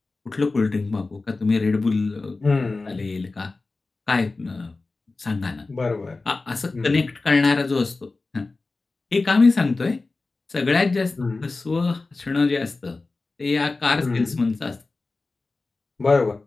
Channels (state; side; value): quieter; right; 3.6 dB